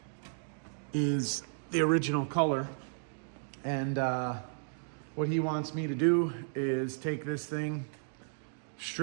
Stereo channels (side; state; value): left; silent; digital silence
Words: is the original color. And what he wants me to do is take this thing,